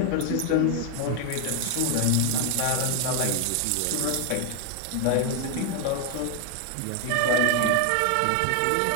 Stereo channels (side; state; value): both; different; correlation 0.01